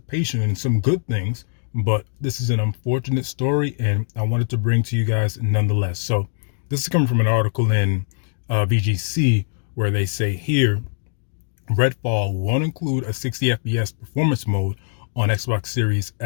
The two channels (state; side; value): silent; right; digital silence